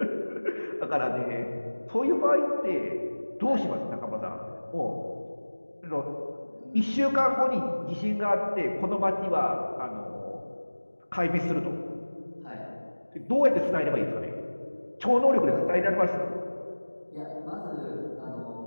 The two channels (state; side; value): inverted; both; correlation -1.00